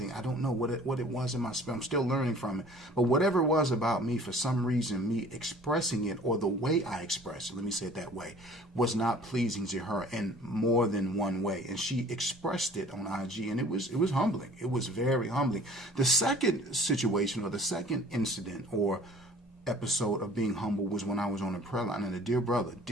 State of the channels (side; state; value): both; normal; correlation 0.50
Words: I don't know what it was in my spirit. I'm still learning from it. But whatever it was about me, for some reason, me expressing it, or the way I expressed it, let me say it that way, was not pleasing to her in more than one way. And she expressed it on IG, and it was humbling. It was very humbling. The second situation, or the second incident or episode of being humble, was when I was on a prayer line, and a dear brother,